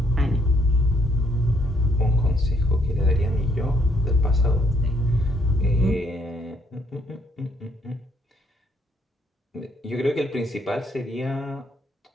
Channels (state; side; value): normal; both; correlation 0.70